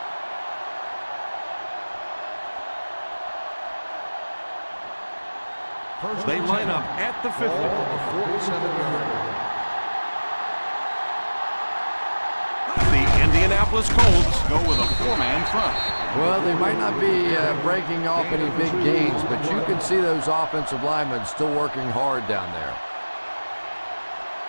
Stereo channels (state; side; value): inverted; both; correlation -1.00